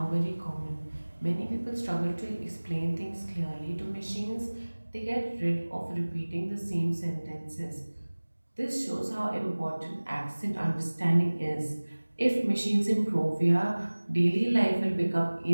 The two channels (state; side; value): inverted; both; correlation -1.00